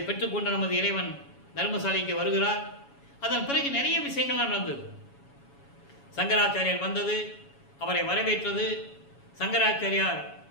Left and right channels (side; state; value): right; late; 7.1 ms